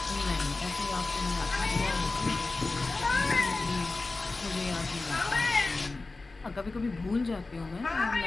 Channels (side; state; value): right; quieter; 3.5 dB